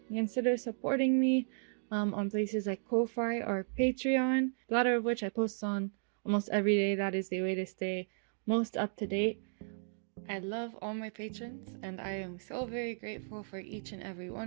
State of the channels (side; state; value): left; silent; digital silence